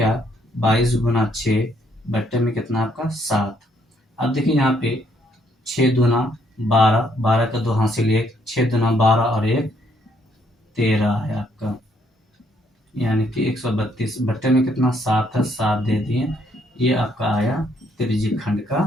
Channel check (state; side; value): normal; both; correlation 0.70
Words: 22 गुना 6 बट्टे में कितना आपका 7। अब देखिए यहाँ पे 6 दूना 12, 12 का 2 हासिल 1, 6 दूना 12 और 1 13 है आपका, यानी कि 132 बट्टे में कितना 7 है, 7 दे दिए। ये आपका आया त्रिज्यखंड